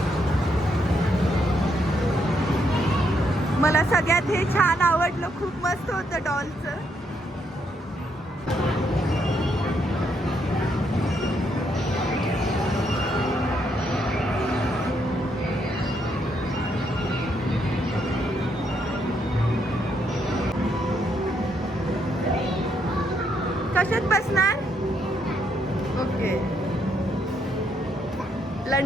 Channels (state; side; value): normal; both; correlation 0.75